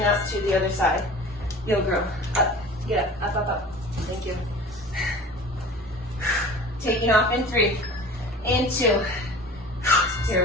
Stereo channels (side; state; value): both; normal; correlation 0.41